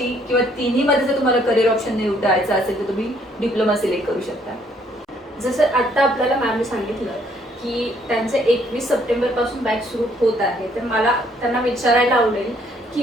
किंवा तिन्हीमध्ये जर तुम्हाला करिअर ऑप्शन निवडायचं असेल तर तुम्ही डिप्लोमा सिलेक्ट करू शकता. जसं आता आपल्याला मॅमने सांगितलं की त्यांचे 21 सप्टेंबर पासून बॅच सुरू होत आहे, तर मला त्यांना विचारायला आवडेल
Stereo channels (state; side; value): normal; both; correlation 0.66